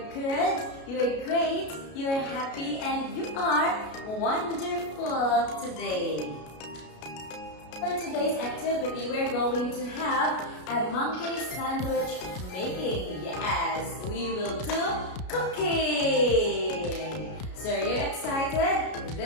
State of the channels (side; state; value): right; late; 33 ms